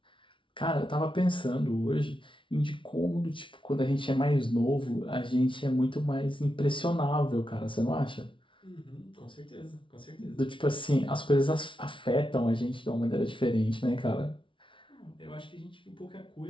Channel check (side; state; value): right; late; 0.25 ms